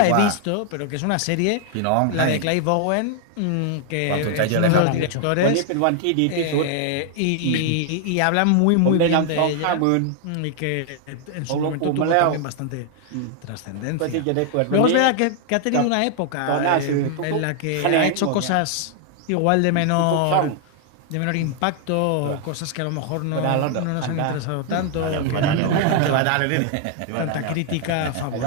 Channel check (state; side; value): different; both; correlation 0.00